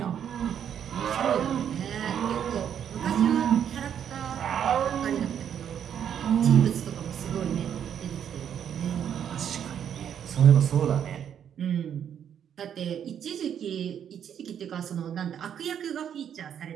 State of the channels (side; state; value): left; quieter; 8.9 dB